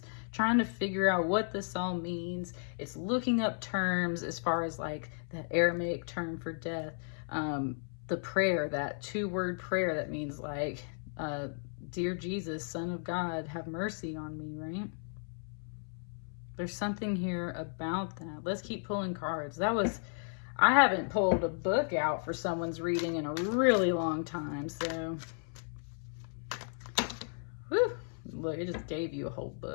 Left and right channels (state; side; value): silent; right; 55 dB below the other